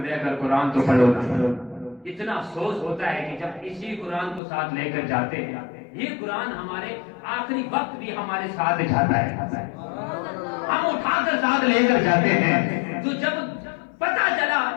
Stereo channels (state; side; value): drops out; right; at 4.4 s